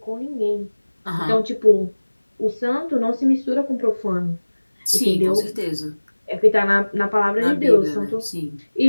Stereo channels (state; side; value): inverted; both; correlation -1.00